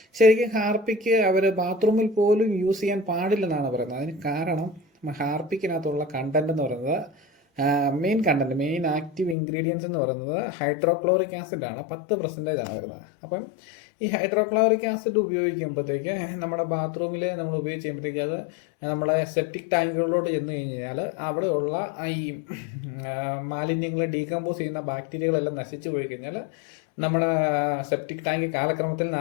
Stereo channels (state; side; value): drops out; right; at 9.3 s